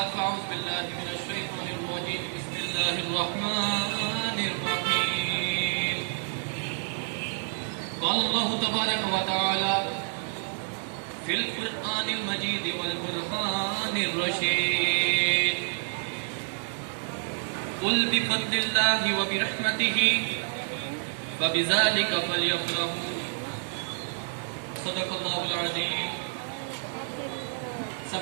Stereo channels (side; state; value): left; silent; digital silence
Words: فأعوذ بالله من الشيطان الرجيم بسم الله الرحمن الرحيم قال الله تبارك وتعالى في القرآن المجيد والبرهان الرشيد قل بفضل الله وبرحمته فبذلك فليفرحوا صدق اللہ العظیم۔